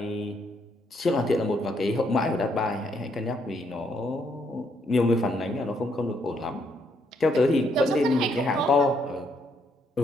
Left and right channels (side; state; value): both; normal; correlation 0.73